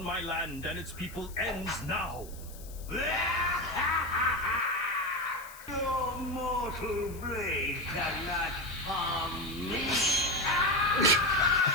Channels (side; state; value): left; noise; hiss, 18 dB below the sound